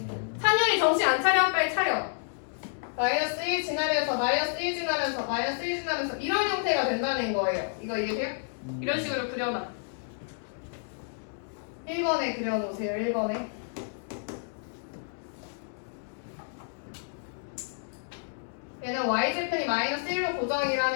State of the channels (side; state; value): right; silent; digital silence